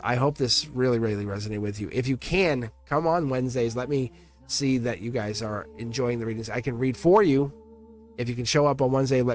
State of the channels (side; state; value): both; identical; correlation 1.00